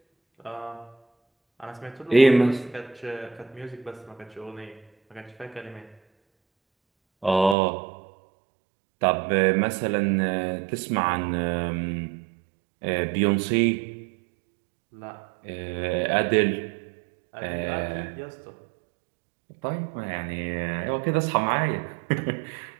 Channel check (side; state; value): left; drops out; at 7.6 s